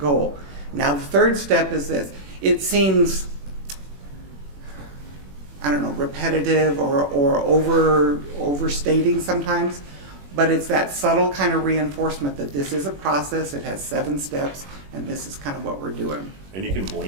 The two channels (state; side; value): late; left; 21 ms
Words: Now the third step is this. It seems, repetitive or overstating sometimes, but it's that subtle kind of reinforcement that this is a process, it has 7 steps, and this is kind of what we're doing. And you can